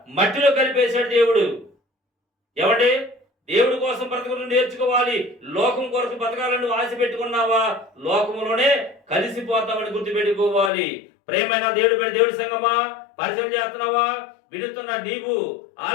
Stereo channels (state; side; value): drops out; right; at 10.7 s